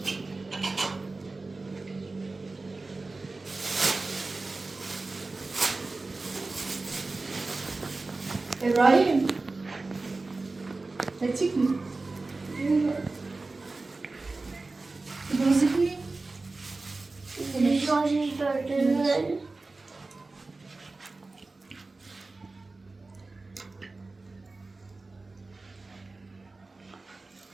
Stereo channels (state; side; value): quieter; left; 3.5 dB